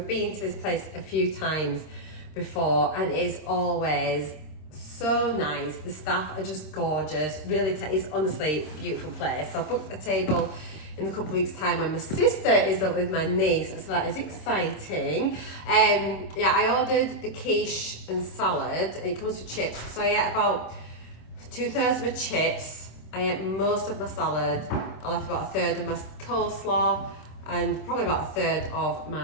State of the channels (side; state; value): right; late; 26 ms